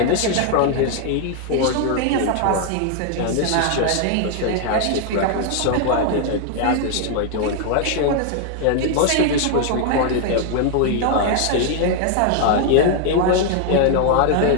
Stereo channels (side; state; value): both; different; correlation 0.00